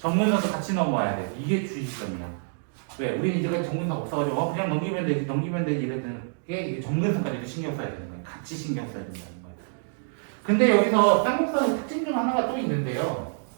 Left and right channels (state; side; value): silent; left; 60 dB below the other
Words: 같이 넘어와야 돼. 이게 주의점이야. 왜? 우리는 이제까지 정근선 없어가지고 그냥 넘기면 되지 이랬던 게 이게 정근선까지도 신경 써야 되는 거야. 같이 신경 써야 된다는 거야. 근데 여기서 쌍곡선의 특징 중 하나가 또 있는데요.